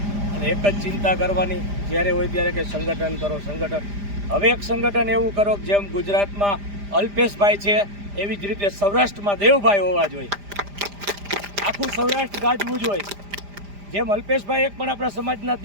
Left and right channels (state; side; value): late; left; 5.0 ms